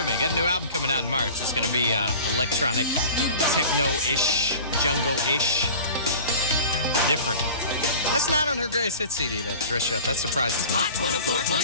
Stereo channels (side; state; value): both; inverted; correlation -0.40